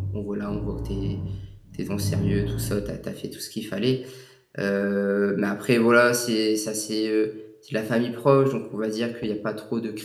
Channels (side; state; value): both; identical; correlation 1.00